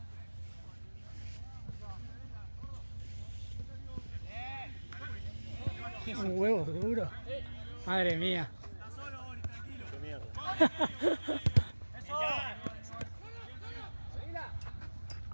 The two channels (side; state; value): both; inverted; correlation -1.00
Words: Un huevo duro. Madre mía.